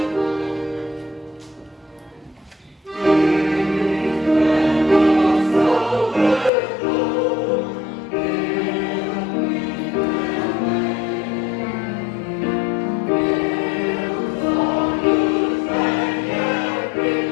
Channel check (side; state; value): right; drops out; at 6.5 s